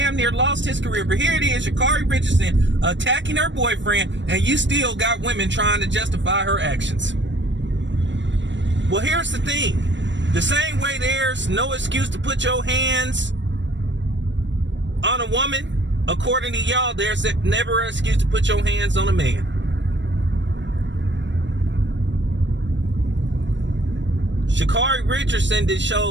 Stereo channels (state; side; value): late; left; 0.53 ms